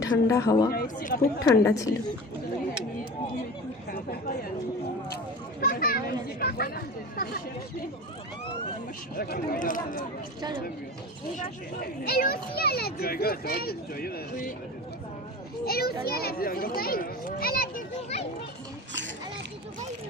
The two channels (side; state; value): both; normal; correlation 0.33